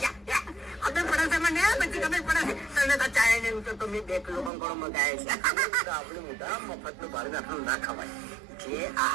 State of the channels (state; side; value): drops out; left; at 4.5 s